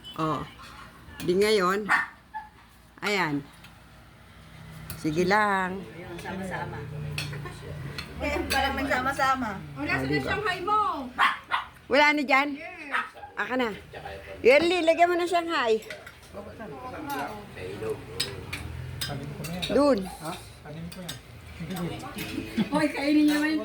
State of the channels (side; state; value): both; identical; correlation 1.00